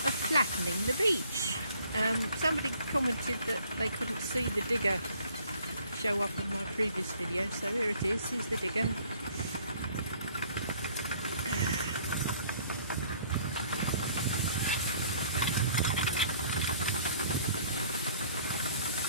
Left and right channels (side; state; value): both; inverted; correlation -0.58